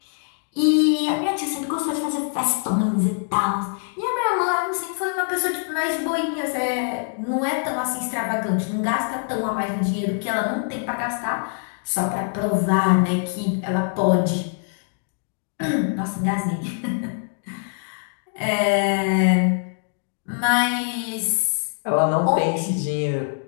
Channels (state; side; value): silent; right; 63 dB below the other